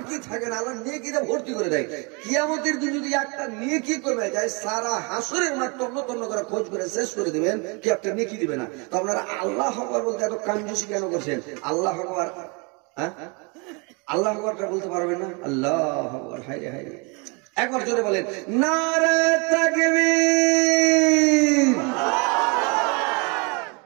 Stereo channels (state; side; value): quieter; left; 31.8 dB